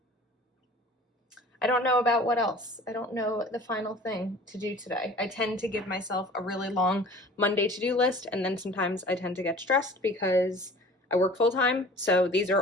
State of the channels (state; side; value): normal; both; correlation 0.45